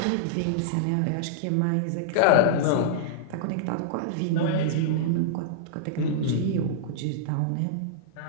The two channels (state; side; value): different; both; correlation -0.02